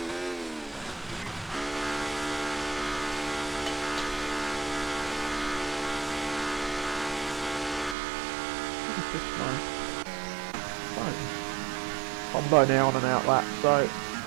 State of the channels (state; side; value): drops out; left; at 8.0 s